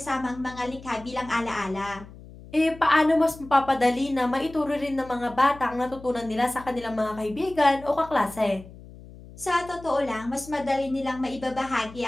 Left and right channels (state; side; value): noise; left; hum, 18 dB below the sound